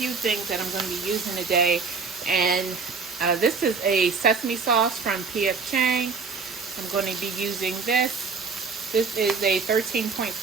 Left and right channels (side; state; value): left; quieter; 4.8 dB